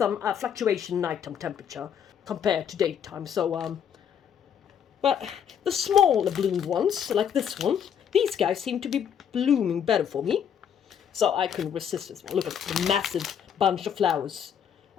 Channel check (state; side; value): quieter; right; 8.3 dB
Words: fluctuation in nighttime temperature compared to daytime. So, but the smaller bloomed ones, like this one, these guys seem to be blooming better for me. So I couldn't resist this one. Look at the massive bunch of flowers.